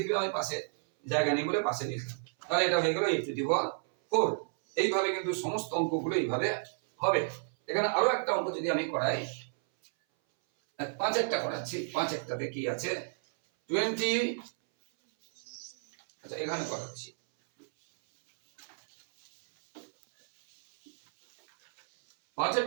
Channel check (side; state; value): left; silent; 57 dB below the other